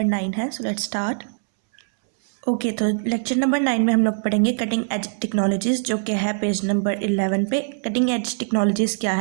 9 है। So let's start. ओके, तो लेक्चर नंबर 9 में हम लोग पढ़ेंगे कटिंग एज टेक्नोलॉजीज़, जो कि है पेज नंबर 11 पे। कटिंग एज टेक्नोलॉजीज़ क्या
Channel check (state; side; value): silent; left; 64 dB below the other